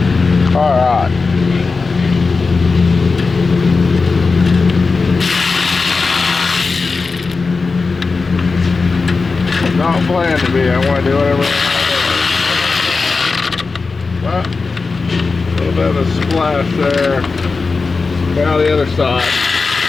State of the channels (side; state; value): right; quieter; 4.3 dB